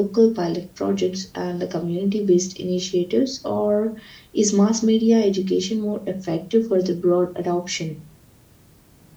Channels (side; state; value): both; identical; correlation 1.00